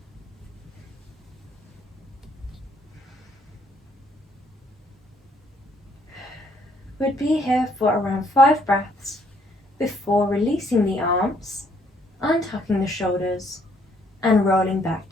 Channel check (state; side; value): normal; both; correlation 0.67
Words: We'd be here for around 5 breaths before releasing the arms, untucking the shoulders, and rolling back